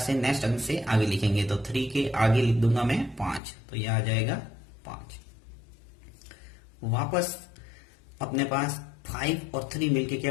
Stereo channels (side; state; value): right; drops out; at 3.4 s